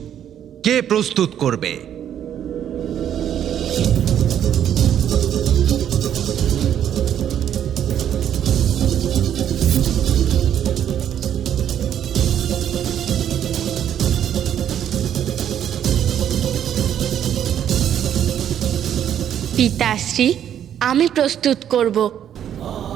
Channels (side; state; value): left; quieter; 9.9 dB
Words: কে প্রস্তুত করবে? পিতাশ্রী, আমি প্রস্তুত করব।